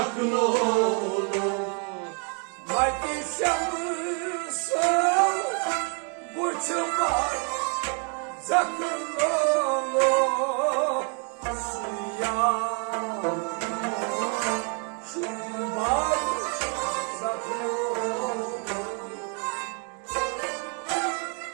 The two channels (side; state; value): left; quieter; 38.7 dB